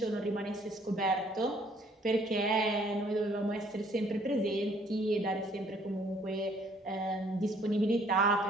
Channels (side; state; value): both; normal; correlation 0.62